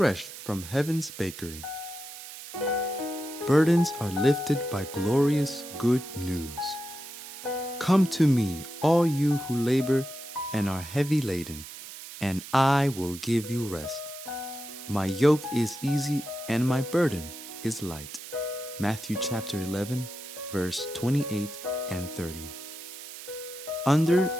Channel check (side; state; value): right; noise; hiss, 13 dB below the sound